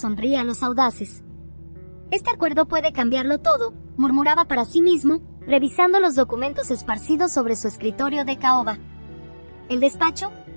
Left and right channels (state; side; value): inverted; both; correlation -1.00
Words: a los audaces. Este acuerdo puede cambiarlo todo, murmuraba para sí mismo, revisando los documentos esparcidos sobre su escritorio de caoba. El despacho,